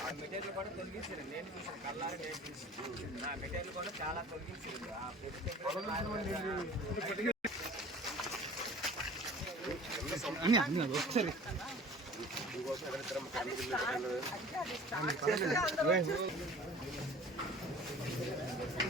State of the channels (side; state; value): both; normal; correlation 0.45